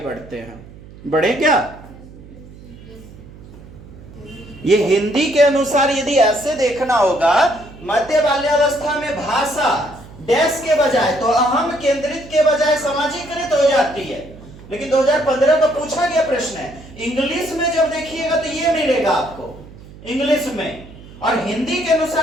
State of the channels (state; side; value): noise; right; hum, 19 dB below the sound